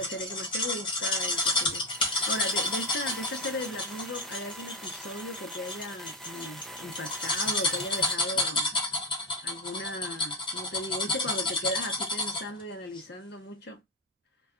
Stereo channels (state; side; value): normal; both; correlation 0.11